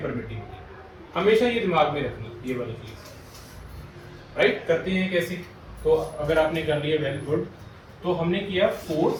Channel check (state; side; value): identical; both; correlation 1.00